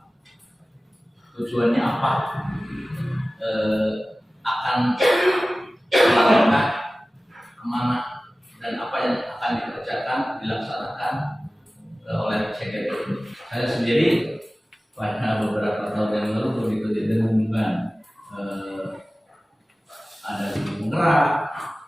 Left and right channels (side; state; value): both; normal; correlation 0.97